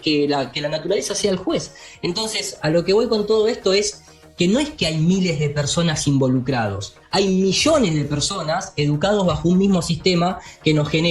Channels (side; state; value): both; identical; correlation 1.00